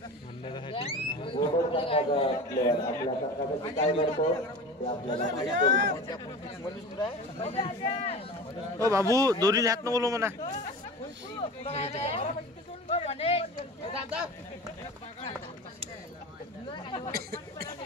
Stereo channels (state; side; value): normal; both; correlation 0.33